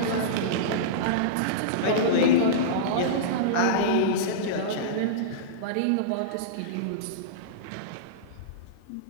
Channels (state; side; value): different; both; correlation -0.04